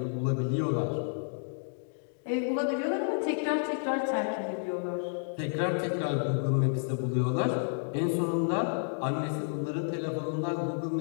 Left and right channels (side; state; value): right; silent; digital silence